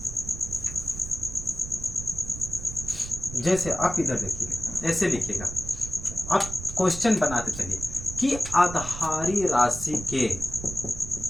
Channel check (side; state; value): right; noise; rumble, 10 dB below the sound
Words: जैसे आप इधर देखिएगा, ऐसे लिखिएगा, आप क्वेश्चन बनाते चलिए कि आधारी राशि के,